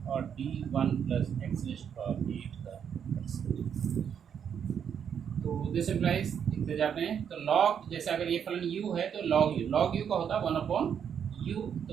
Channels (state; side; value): quieter; left; 8.0 dB